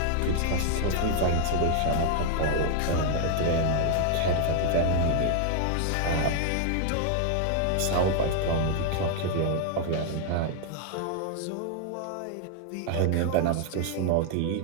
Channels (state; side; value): different; both; correlation 0.00